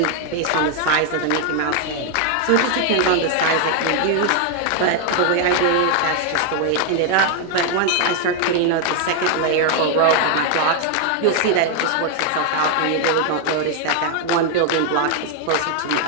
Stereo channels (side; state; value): both; different; correlation 0.00